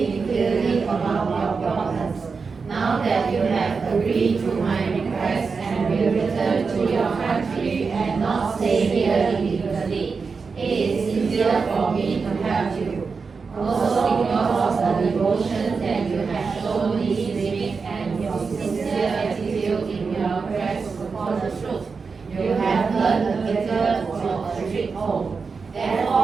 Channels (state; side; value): quieter; left; 5.0 dB